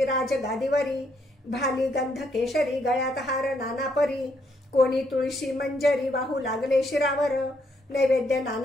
राज गादीवरी भाली गंध केशरी गळ्यात हार नाना परी कोणी तुळशी मंजरी वाहू लागले शिरावर नैवेद्य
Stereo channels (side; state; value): both; normal; correlation 0.73